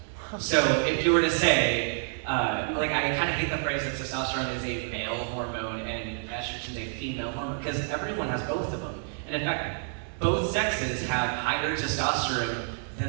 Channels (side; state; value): left; silent; digital silence